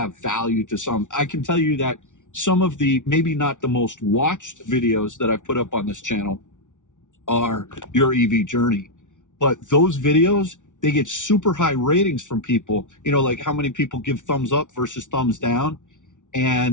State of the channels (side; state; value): right; late; 0.87 ms